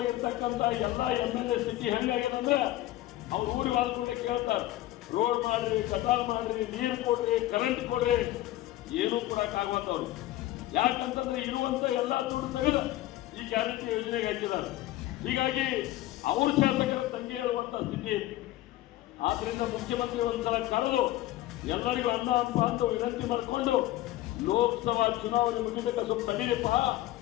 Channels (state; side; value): quieter; right; 15.7 dB